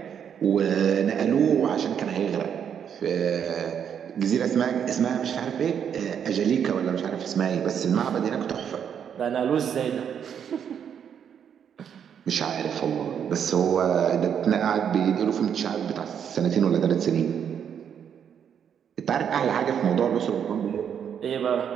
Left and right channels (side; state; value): left; quieter; 8.2 dB